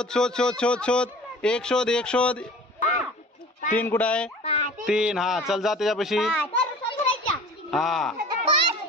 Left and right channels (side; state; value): both; normal; correlation 0.43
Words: शोध शोध शोध शोध. 1 शोध 1 शोध. 3 कुठं आहे? 3 हा चल जा त्याच्यापाशी. हा